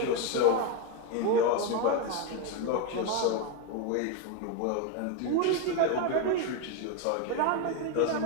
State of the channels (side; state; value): both; different; correlation 0.02